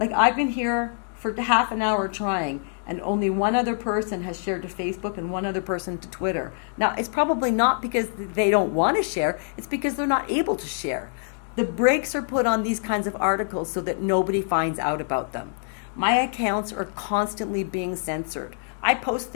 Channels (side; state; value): right; silent; digital silence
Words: I've been here for half an hour trying, and only one other person has shared to Facebook and one other person to Twitter. Now, it's probably not because they don't want to share. It's because they're not able to share. The brakes are put on these kinds of articles so that nobody finds out about them. My accounts are constantly being censored. I post